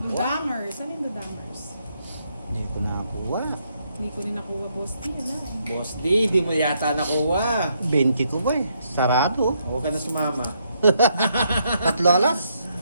Ano yung Dudamers? Hindi ko nakakuha. Hindi ko rin nakuha, boss. Di, wala eh. Boss D, di mo yata nakuha. 20 ko ba eh. Sarado. Huwag ka na sumama. 3 alas.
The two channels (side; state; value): both; inverted; correlation -0.75